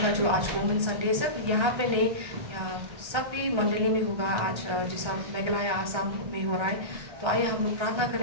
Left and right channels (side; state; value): left; late; 1.3 ms